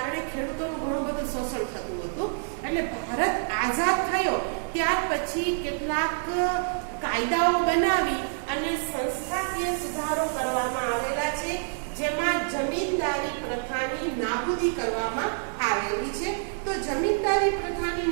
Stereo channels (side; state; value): left; silent; 57 dB below the other